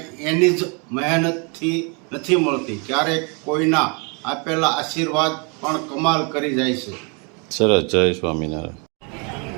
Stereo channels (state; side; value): quieter; left; 33.7 dB